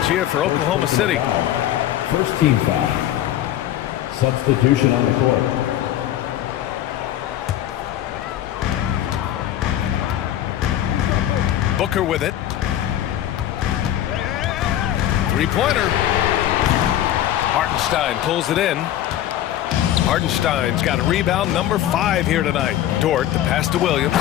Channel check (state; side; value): quieter; right; 12.3 dB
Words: here for Oklahoma City. First team foul. Substitution on the court. Booker with it. Three-pointer. Hartenstein pulls it in. Hartenstein's got a rebound number 5 here tonight. Dort, the pass to Williams.